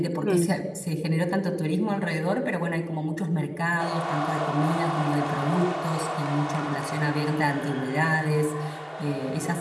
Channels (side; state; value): both; identical; correlation 1.00